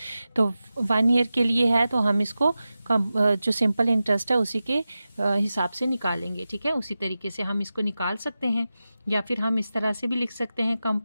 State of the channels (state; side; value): inverted; both; correlation -0.94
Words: तो 1 ईयर के लिए है तो हम इसको जो सिंपल इंटरेस्ट है उसी के हिसाब से निकालेंगे। ठीक है, उसी तरीके से हम इसको निकाल सकते हैं, या फिर हम इस तरह से भी लिख सकते हैं